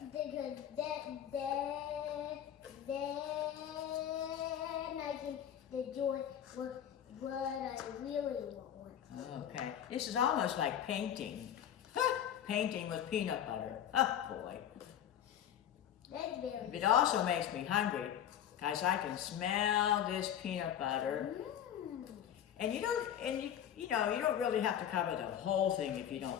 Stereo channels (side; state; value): right; quieter; 10.0 dB